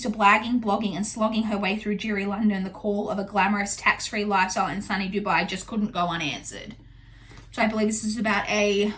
to blagging, blogging, and slogging her way through Jiri London. The call of a glamorous, tax-free lifestyle in sunny Dubai just couldn't go unanswered. So I believe this is about a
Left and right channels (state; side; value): identical; both; correlation 1.00